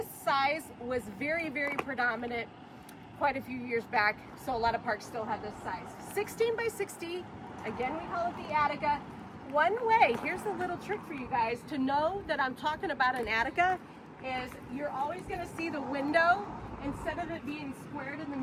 size was very, very predominant quite a few years back, so a lot of parks still have this size. 16 by 60, again we call it the Attica. One way, here's a little trick for you guys to know that I'm talking about an Attica, is you're always going to see the window, instead of it being squared in the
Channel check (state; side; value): identical; both; correlation 1.00